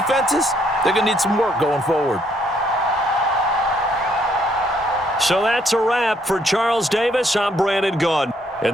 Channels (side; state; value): both; normal; correlation 0.69